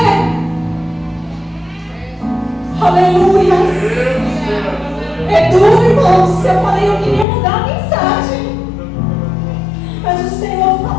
Aleluia. É duro, irmãos. Eu falei, eu queria mudar a mensagem, mas o Senhor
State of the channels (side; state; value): right; drops out; at 7.2 s